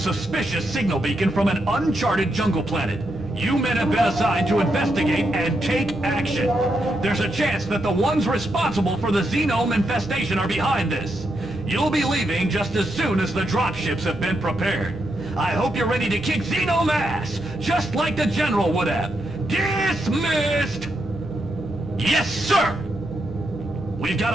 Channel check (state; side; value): normal; both; correlation 0.82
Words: signal beacon from an uncharted jungle planet. You men have been assigned to investigate and take action. There's a chance that the ones responsible for the xenome infestation are behind this. You'll be leaving just as soon as the dropships have been prepared. I hope you're ready to kick xenome ass, just like the general would have. Dismissed! Yes, sir! We've